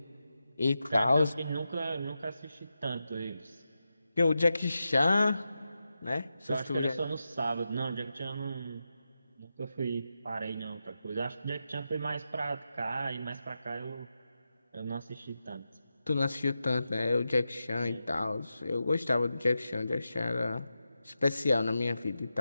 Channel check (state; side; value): inverted; both; correlation -0.90